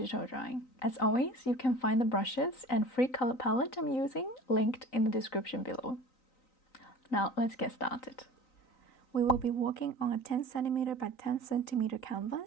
drawing. As always, you can find the brushes and free color palette I'm using linked in the description below. Now let's get started. We will be working on a 10 cm by 10 cm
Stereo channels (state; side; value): late; right; 3.9 ms